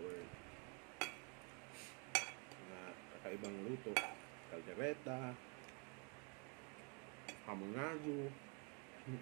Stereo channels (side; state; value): left; quieter; 35.5 dB